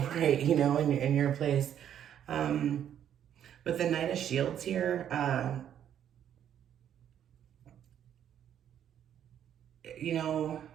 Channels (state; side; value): quieter; left; 9.8 dB